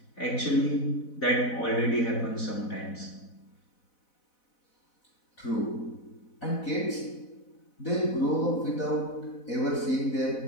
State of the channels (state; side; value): late; right; 4.0 ms